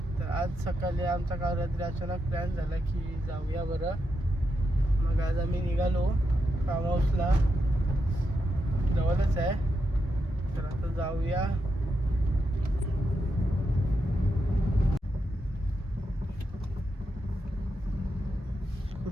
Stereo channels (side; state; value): both; normal; correlation 0.84